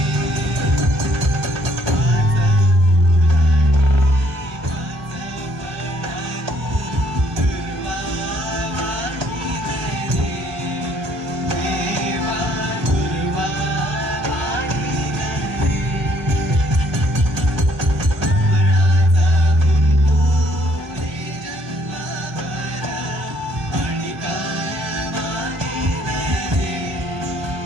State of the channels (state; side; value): late; left; 1.4 ms